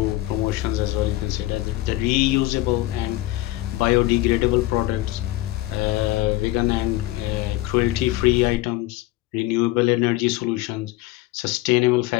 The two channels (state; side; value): quieter; right; 17.2 dB